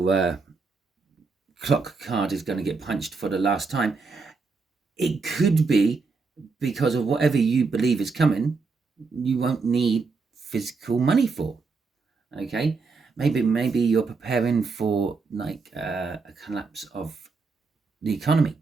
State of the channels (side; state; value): left; quieter; 4.4 dB